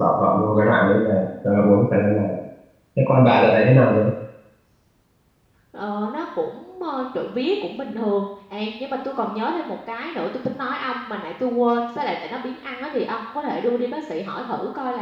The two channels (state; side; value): identical; both; correlation 1.00